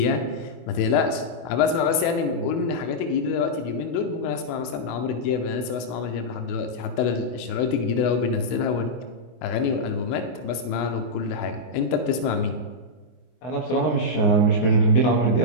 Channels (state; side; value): late; right; 24 ms